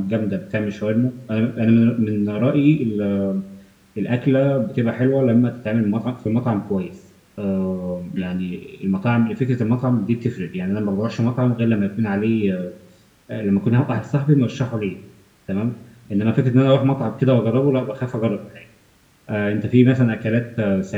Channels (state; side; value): identical; both; correlation 1.00